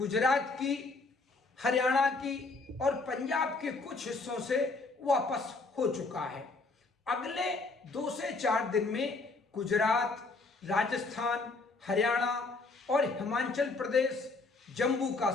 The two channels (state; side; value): quieter; right; 3.7 dB